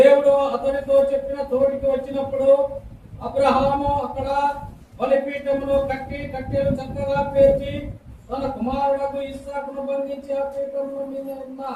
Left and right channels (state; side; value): identical; both; correlation 1.00